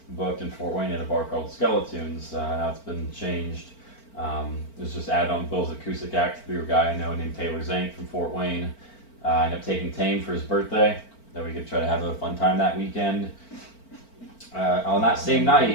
booked in Fort Wayne at a bar called Skeletoons. Now it's been changed. It was just added on Bill's acoustic act through a guy I know named Taylor Zank from Fort Wayne. I ended up taking Tame for his birthday, that we could try to have a fun time that weekend. On that same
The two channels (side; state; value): right; late; 4.4 ms